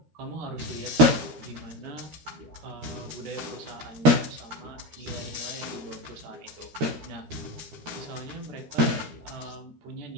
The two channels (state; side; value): late; left; 13 ms